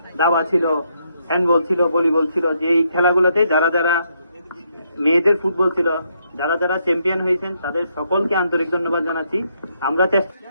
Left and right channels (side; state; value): both; inverted; correlation -0.76